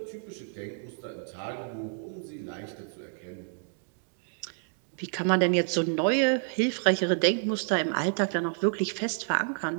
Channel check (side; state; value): left; silent; digital silence